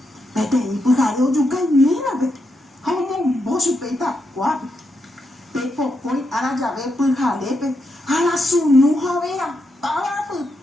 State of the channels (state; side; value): normal; both; correlation 0.83